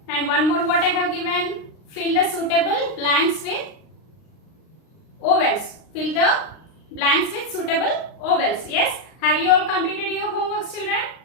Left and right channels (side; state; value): right; late; 39 ms